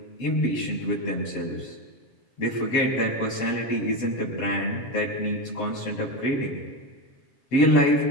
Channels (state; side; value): late; right; 7.5 ms